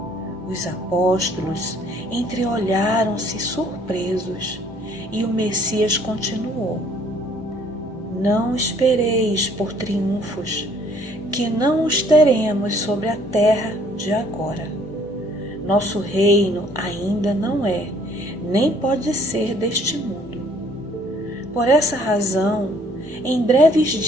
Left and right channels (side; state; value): both; normal; correlation 0.60